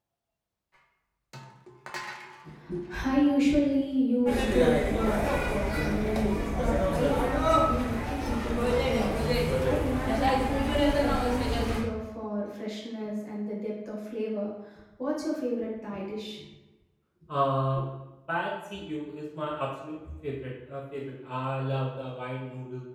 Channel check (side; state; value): both; identical; correlation 1.00